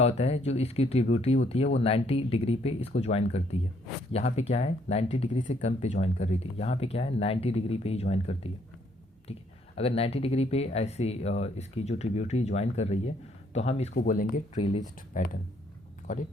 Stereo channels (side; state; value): both; normal; correlation 0.68